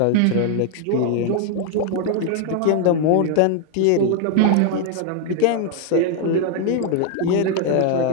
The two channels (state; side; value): different; both; correlation 0.01